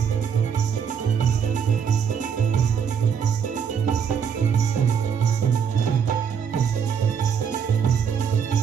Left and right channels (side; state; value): left; quieter; 7.2 dB